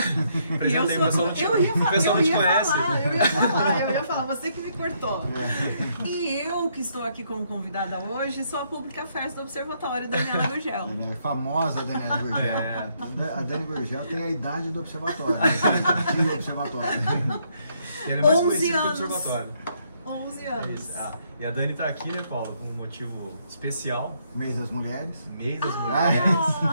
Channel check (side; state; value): both; inverted; correlation -0.72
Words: Apresentei, o pessoal não te conhece. Eu ia falar, você que me cortou. E eu que estou aqui como convidada hoje sou a Pública Affairs do Observatório, Daniela Gurgel. É famosa Daniela Gurgel. É. A Dani Gurgel tem a idade do Observatório. Do Observatório. Ele é mais 11 conhecido anos. do Observatório. 11 É anos. isso. E a Dani está aqui, né, Paulo, com um motivo especial. Mês das Mulheres. Mês das Mulheres.